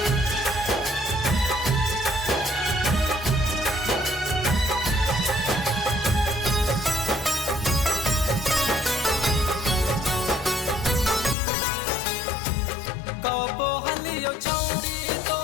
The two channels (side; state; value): right; drops out; at 11.4 s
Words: कबो हलियो छौड़ी